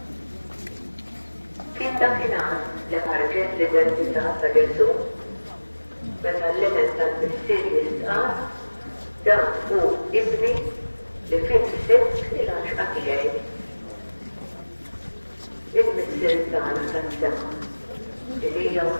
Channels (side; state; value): both; inverted; correlation -1.00